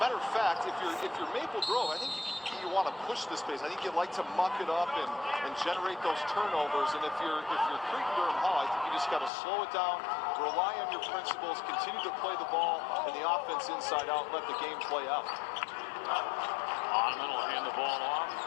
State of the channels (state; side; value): drops out; right; at 9.3 s